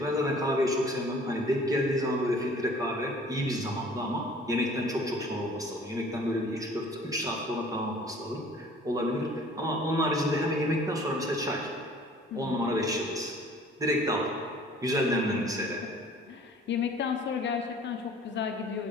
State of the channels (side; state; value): both; normal; correlation 0.51